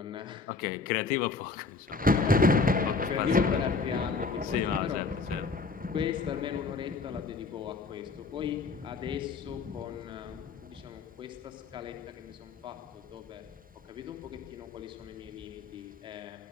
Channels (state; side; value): quieter; right; 4.3 dB